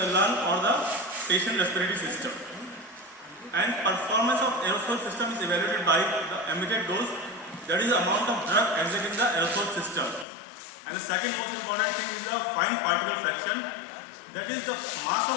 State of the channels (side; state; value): right; drops out; at 10.2 s